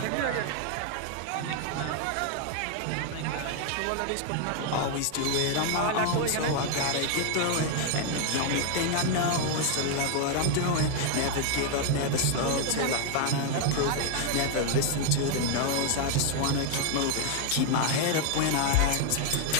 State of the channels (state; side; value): different; both; correlation 0.00